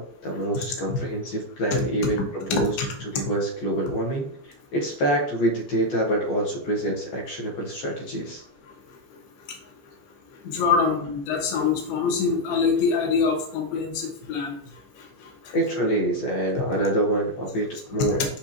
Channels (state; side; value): late; right; 15 ms